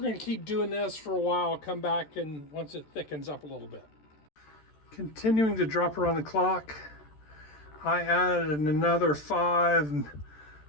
going to keep doing this for a while, come back and once it thickens up a little bit. Continuing to drop her on the clock, I added another 5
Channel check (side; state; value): right; late; 13 ms